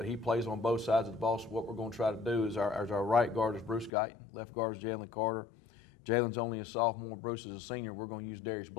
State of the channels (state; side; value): drops out; right; at 3.9 s